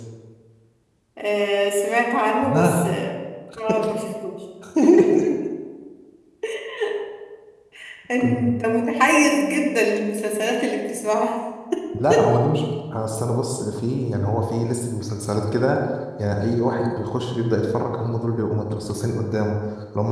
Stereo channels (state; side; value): identical; both; correlation 1.00